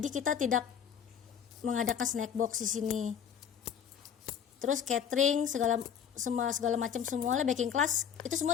kita tidak mengadakan snack box di sini. Terus catering segala macam semuanya, baking class itu semua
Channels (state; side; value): quieter; right; 8.1 dB